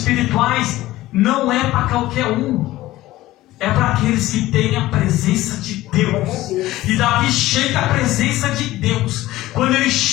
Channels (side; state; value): right; quieter; 16.5 dB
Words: não é para qualquer um. É para aqueles que têm a presença de Deus. E Davi chega à presença de Deus. Quando ele